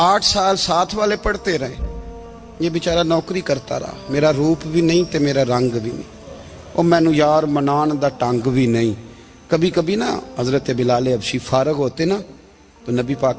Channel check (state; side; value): identical; both; correlation 1.00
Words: साल साथ वाले पढ़ते रहे, ये बेचारा नौकरी करता रहा, मेरा रूप भी नहीं ते मेरा रंग भी नहीं, और मैनू यार मनान दा टंग भी नहीं। कभी कभी ना हजरत बिलाल हबशी फारग होते ना तो नबी